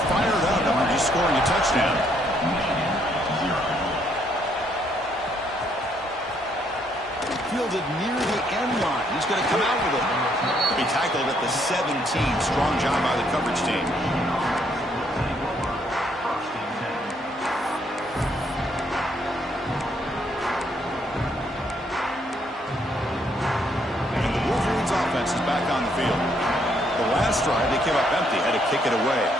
fired up after just scoring a touchdown. Fielded near the end line. He's going to come out with it. He tackled at the 17. Strong job by the coverage team. And the Wolverines offense is back on the field. The last drive, they came up empty, had to kick it away.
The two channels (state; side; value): normal; both; correlation 0.71